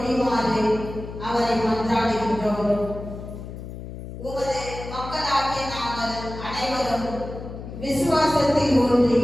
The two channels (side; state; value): left; noise; hum, 11 dB below the sound